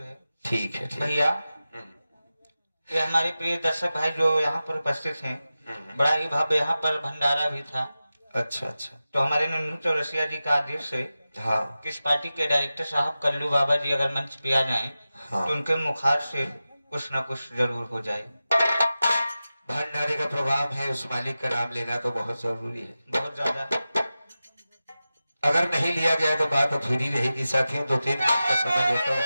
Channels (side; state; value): both; inverted; correlation -0.94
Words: है। ठीक है ठीक है। भैया ये हमारे प्रिय दर्शक भाई जो यहाँ पर उपस्थित हैं, बड़ा ही भव्य यहाँ पर भंडारा भी था। अच्छा अच्छा। तो हमारे नन्नू चौरसिया जी का आदेश है हाँ कि इस पार्टी के डायरेक्टर साहब कल्लू बाबा जी अगर मंच पे आ जाएं, हाँ। तो उनके मुखार से कुछ न कुछ जरूर हो जाए। भंडारे का प्रोग्राम है, उस मालिक का नाम लेना तो बहुत जरूरी है। बहुत ज्यादा। अगर नहीं लिया गया तो बात अधूरी रहेगी। साथियों 2-3 मिनट का समय लेता हूँ।